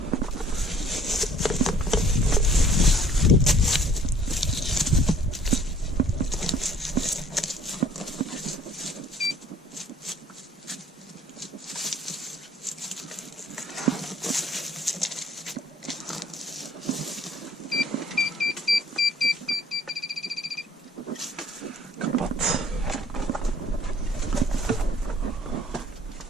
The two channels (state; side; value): normal; both; correlation 0.56